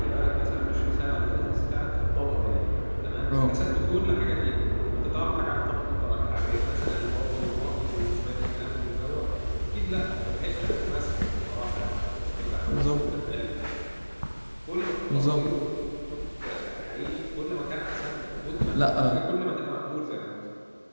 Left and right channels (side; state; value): both; inverted; correlation -1.00